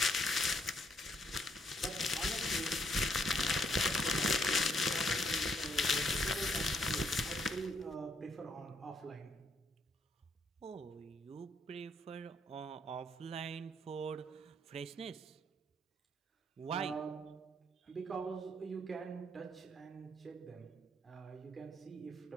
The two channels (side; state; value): both; normal; correlation 0.71